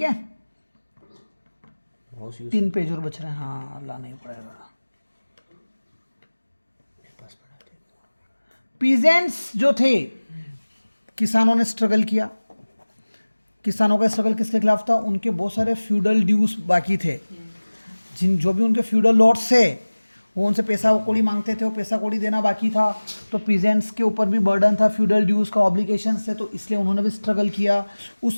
है, माउस यूज 3 पेज और बच रहे हैं। हाँ लाना ही पड़ेगा। पास पड़ा थे। पीजेंट्स जो थे, किसानों ने स्ट्रगल किया। किसानों का स्ट्रगल किसके खिलाफ था? उनके बहुत सारे फ्यूडल ड्यूज बाकी थे, जो भी उनके फ्यूडल लॉर्ड्स थे वो उनसे पैसा कौड़ी मांगते थे, वो पैसा कौड़ी देना बाकी था, तो पीजेंट्स के ऊपर भी बर्डन था, फ्यूडल ड्यूज का ऑब्लिगेशंस थे, तो इसलिए उन्होंने भी स्ट्रगल किया। उस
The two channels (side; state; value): both; inverted; correlation -1.00